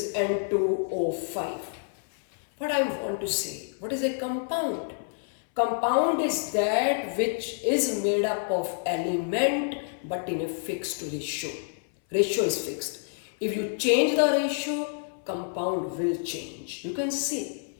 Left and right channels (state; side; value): silent; right; 59 dB below the other